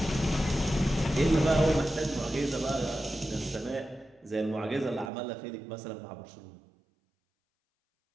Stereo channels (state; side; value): drops out; left; at 5.1 s